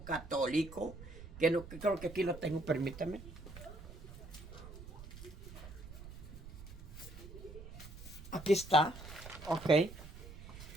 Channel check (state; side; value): noise; right; rumble, 14 dB below the sound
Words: católico, que creo que aquí lo tengo, permítame. Aquí está, ok.